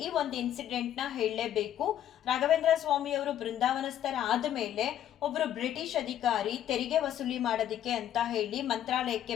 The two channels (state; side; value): quieter; right; 11.0 dB